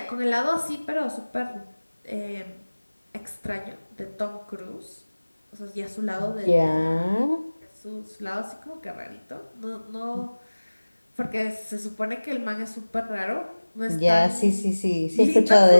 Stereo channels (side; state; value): both; inverted; correlation -1.00